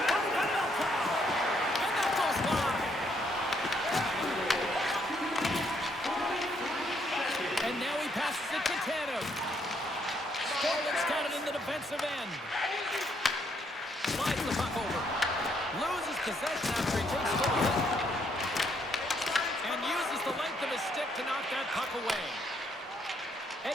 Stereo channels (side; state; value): both; normal; correlation 0.72